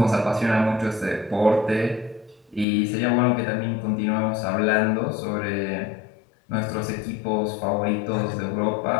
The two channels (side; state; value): right; drops out; at 2.7 s